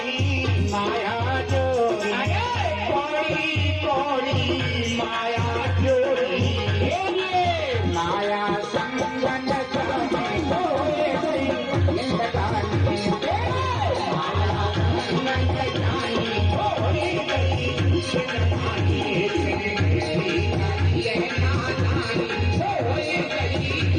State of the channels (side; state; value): both; identical; correlation 1.00